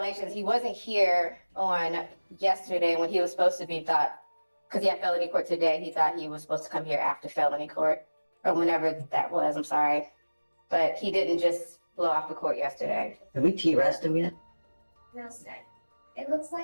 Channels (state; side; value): inverted; both; correlation -1.00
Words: he wasn't here on yesterday when he was supposed to be because he had felony court today. He thought he was supposed to come here after felony court, or whenever that was, I'm sorry. But he didn't just blow off the court yesterday. Have we T-rest him yet? No, sir. It looks